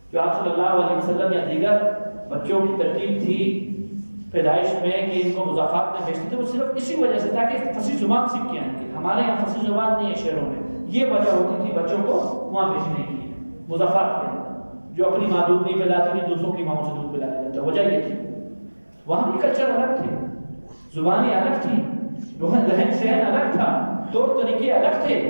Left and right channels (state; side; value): inverted; both; correlation -1.00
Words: جو آپ صلی اللہ علیہ وسلم یا دیگر بچوں کی ترتیب تھی پیدائش میں کہ ان کو مضافات میں بھیجتے تھے، وہ صرف اسی وجہ سے تاکہ فصیح زبان سیکھ کے آئیں گے۔ ہمارے یہاں فصیح زبان نہیں ہے شہروں میں، یہ وجہ ہوتی تھی بچوں کو وہاں بھیجنے کی، مضافات کے اندر، جو اپنی ماں دودھ نہیں پلاتی تھی دوسروں کی ماں سے دودھ پلایا جاتا، وجہ یہ تھی۔ وہاں بھی کلچر الگ تھے، زبانیں الگ تھی، رہن سہن الگ تھا، طور طریقے الگ تھے،